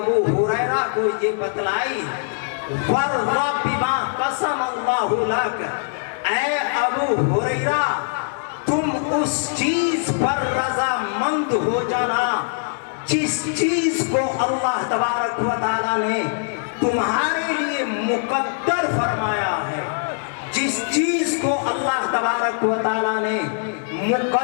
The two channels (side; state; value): right; silent; digital silence